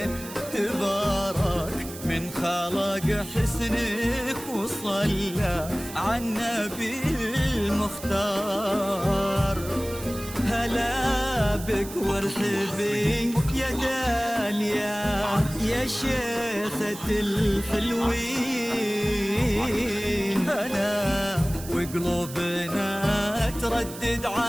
تبارك من خلق حسنك وصلى على النبي المختار. هلا بك وارحبي يا داليا يا شيخة الحلوين. أنا وقلوبنا تردد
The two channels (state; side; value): noise; right; hiss, 13 dB below the sound